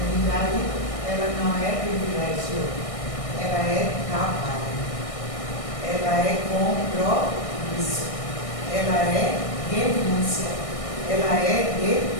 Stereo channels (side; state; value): right; late; 1.6 ms